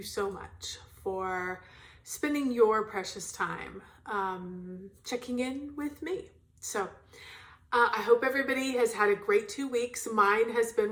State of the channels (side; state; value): both; identical; correlation 1.00